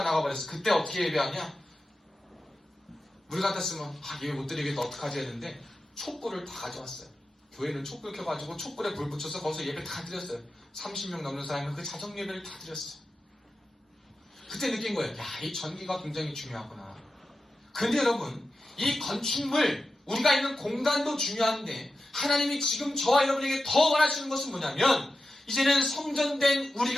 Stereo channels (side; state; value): both; normal; correlation 0.92